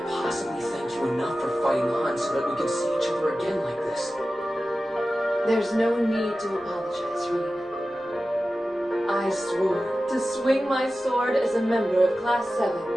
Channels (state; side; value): normal; both; correlation 0.94